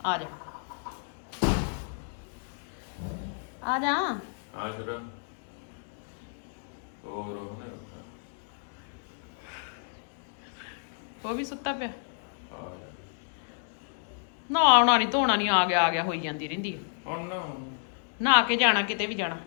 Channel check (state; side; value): silent; right; digital silence